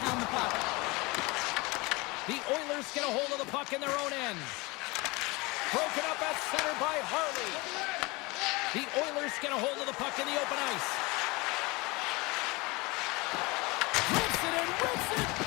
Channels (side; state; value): right; quieter; 24.6 dB